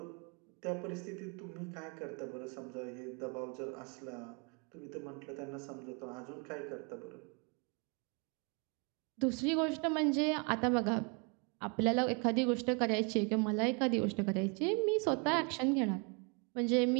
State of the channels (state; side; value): quieter; left; 34.2 dB